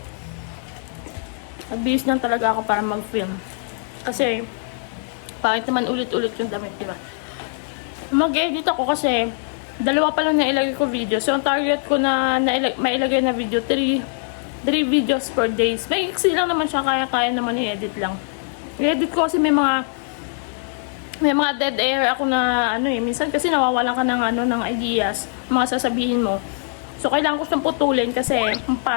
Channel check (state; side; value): silent; right; 64 dB below the other